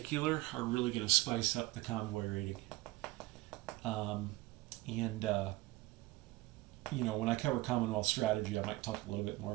are really going to spice up the convoy rating. And you know, when I cover Commonwealth strategy, I might talk a little bit more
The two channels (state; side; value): quieter; left; 19.6 dB